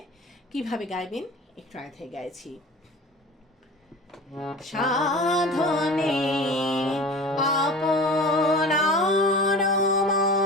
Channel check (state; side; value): normal; both; correlation 0.37